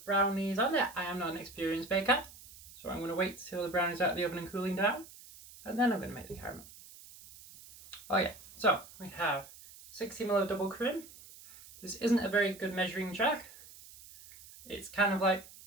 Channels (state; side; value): noise; right; hiss, 19 dB below the sound